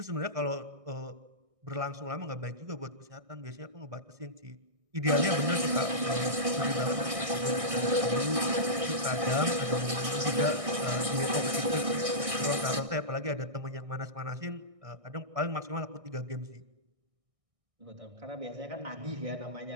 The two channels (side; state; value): left; late; 1.6 ms